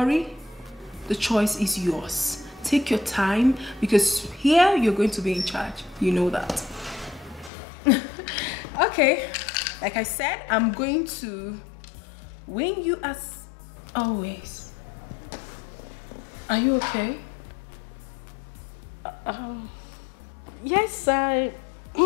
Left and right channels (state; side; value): drops out; right; at 7.5 s